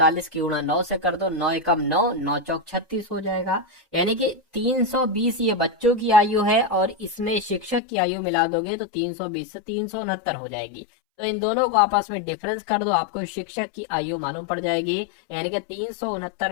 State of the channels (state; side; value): drops out; right; at 7.8 s